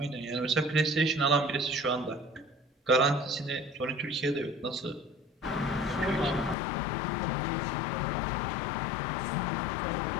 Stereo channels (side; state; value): right; drops out; at 6.6 s